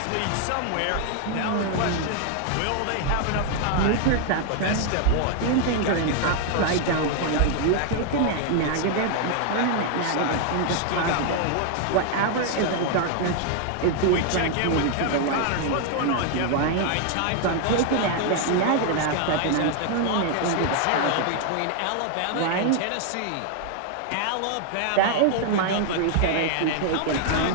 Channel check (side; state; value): both; different; correlation 0.00